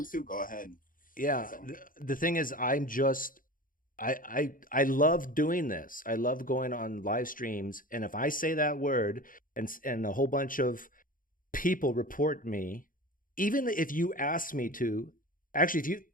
to, go ahead. Yeah, so. The thing is, I'm just. I love doing this. I love going on live streams, and if I say that word and a whole bunch of people report me, even if you ask me to, actually,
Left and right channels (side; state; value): right; late; 0.40 ms